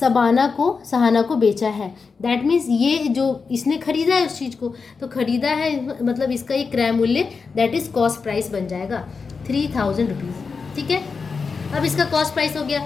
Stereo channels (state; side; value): quieter; right; 5.0 dB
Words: को बेचा है। दैट मीन्स ये जो इसने खरीदा है उस चीज़ को, तो खरीदा है मतलब इसका ये क्रय मूल्य दैट इज कॉस्ट प्राइस बन जाएगा 3000 रुपीज़। ठीक है, अब इसका कॉस्ट प्राइस हो गया।